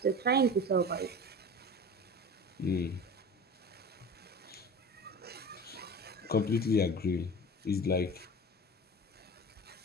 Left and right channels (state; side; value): normal; both; correlation 0.35